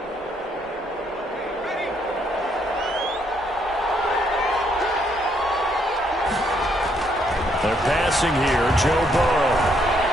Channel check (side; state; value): both; normal; correlation 0.72